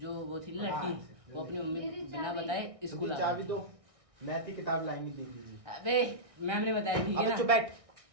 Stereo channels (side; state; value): left; late; 1.6 ms